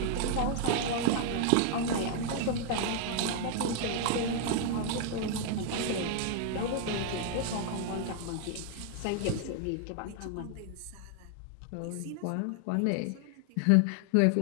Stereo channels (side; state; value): both; different; correlation 0.00